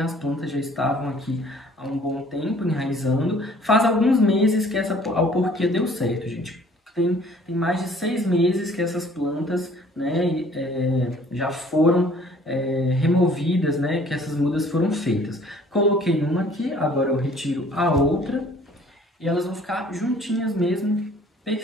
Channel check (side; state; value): both; normal; correlation 0.55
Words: As plantas já estavam aqui há um bom tempo enraizando. Faz alguns meses que essa alporquia deu certo, gente. Tem mais de 6 meses que essas plantas, né, já foram removidas, né, que essas mudas foram feitas. Coloquei uma aqui, agora eu retiro a outra e elas vão ficar juntinhas mesmo,